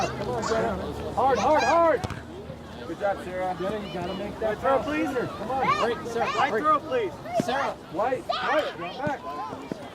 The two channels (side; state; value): both; identical; correlation 1.00